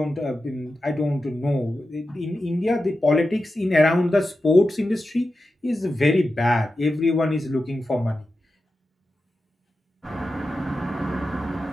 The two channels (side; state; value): both; normal; correlation 0.92